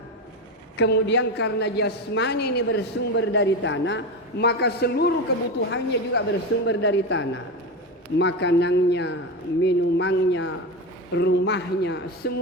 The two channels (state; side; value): normal; both; correlation 0.19